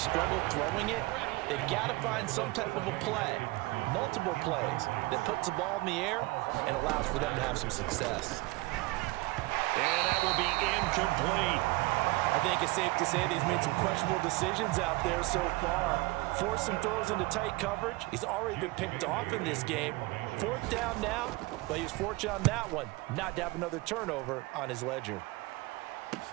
struggled throwing it, they've got to find some type of a play, multiple plays, that puts the ball in the air and allows for them to have some success. And that will be incomplete. I think it's safe to say that he's made some questionable decisions out there so far. Forced some throws into tight coverage. He's already been picked off in this game. Fourth down now, but he was fortunate on that one not to have another turnover on his ledger.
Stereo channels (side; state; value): left; quieter; 22.0 dB